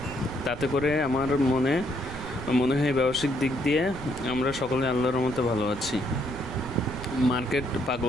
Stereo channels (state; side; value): noise; right; rumble, 12 dB below the sound